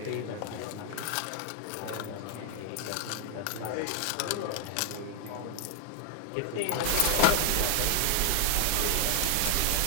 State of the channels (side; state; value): both; different; correlation 0.00